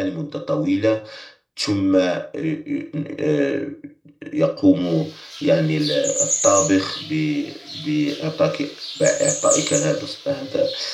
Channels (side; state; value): both; identical; correlation 1.00